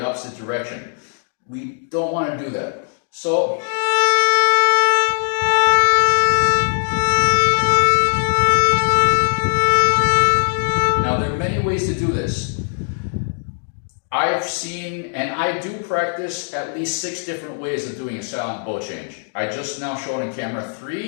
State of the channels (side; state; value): right; silent; 66 dB below the other